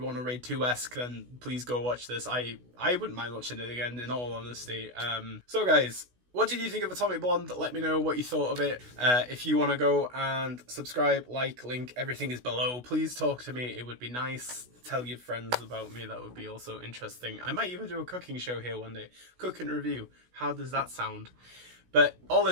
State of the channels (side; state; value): left; late; 16 ms